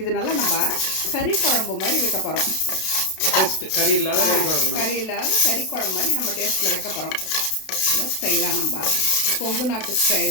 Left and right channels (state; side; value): late; right; 32 ms